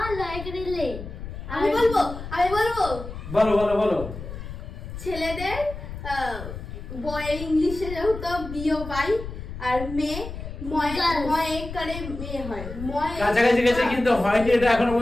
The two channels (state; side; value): noise; left; rumble, 10 dB below the sound